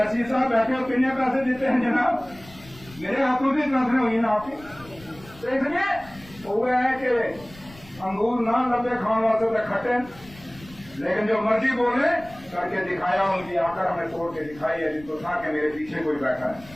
साहब बैठे हो कितने पैसे देते हैं जनाब? मेरे हाथों से ट्रांसफर हुई ना आपकी। तो इसलिए वो है कि अंगूर ना लंबे खाने वाले तो खट्टे, लेकिन जो मर्जी बोले करके दिखाया, उनकी आकर हमें तोड़ के दिखाई है, जिनको था कि मेरे पीछे कोई बैठा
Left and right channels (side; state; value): left; noise; rumble, 21 dB below the sound